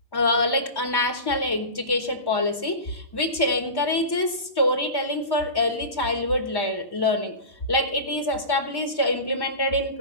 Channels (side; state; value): right; late; 1.1 ms